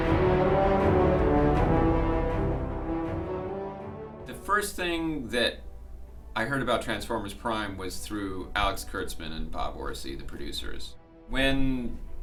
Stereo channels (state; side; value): identical; both; correlation 1.00